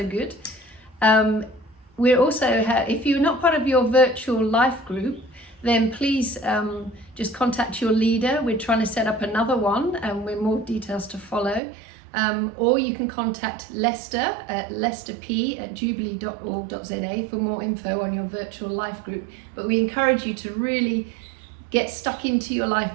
good. We're also, if you're not part of your virtual life group, then please just contact your leader. We're trying to set up another one, and with more details to follow. Or you can contact Lester at lesterp@jubilee.org.za for more info on your virtual life group. But we encourage you to really get stuck into your life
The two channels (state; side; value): drops out; left; at 11.6 s